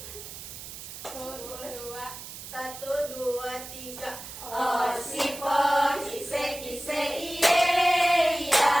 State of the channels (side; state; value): right; noise; hiss, 12 dB below the sound